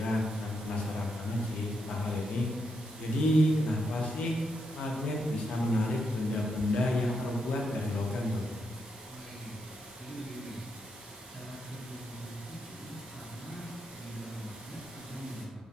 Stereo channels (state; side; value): normal; both; correlation 0.81